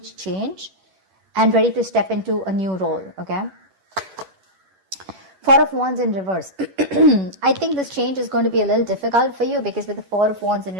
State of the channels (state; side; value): late; left; 11 ms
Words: change and ready to step into a new role, okay? Four of Wands in reverse. I think this change is going to be a little difficult for you because with the Four of Wands in